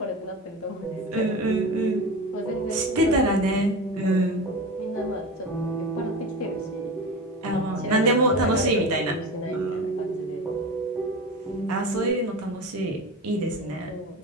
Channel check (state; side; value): normal; both; correlation 0.27